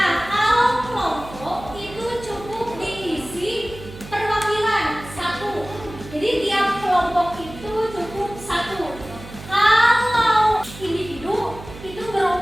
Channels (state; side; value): noise; right; hum, 15 dB below the sound